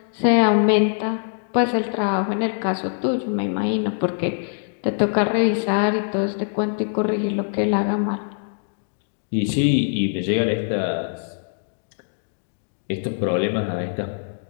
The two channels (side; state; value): right; silent; digital silence